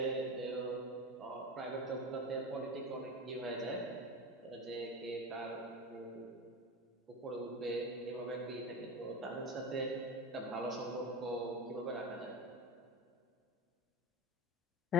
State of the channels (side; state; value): both; normal; correlation 0.26